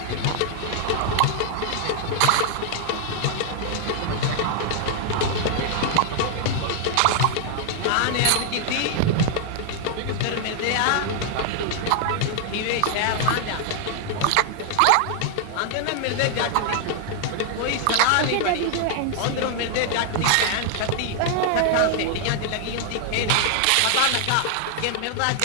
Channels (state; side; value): different; both; correlation 0.00